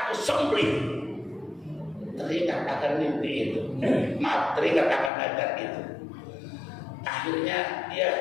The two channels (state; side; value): drops out; right; at 5.1 s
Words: sembelih. Teringat akan mimpi itu, maaf, teringat akan nadar itu. Akhirnya dia